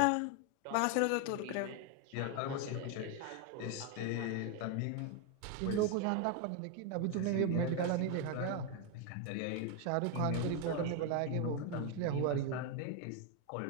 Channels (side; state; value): both; different; correlation 0.01